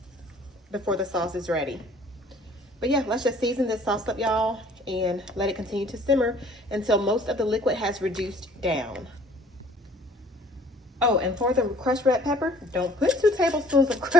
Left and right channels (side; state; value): both; normal; correlation 0.55